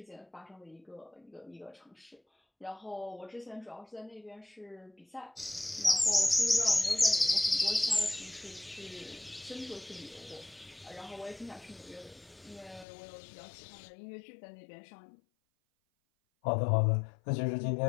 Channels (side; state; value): right; drops out; at 12.9 s